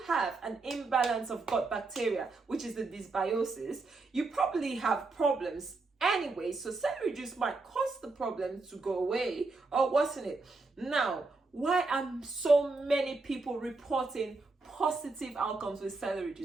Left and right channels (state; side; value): quieter; left; 3.6 dB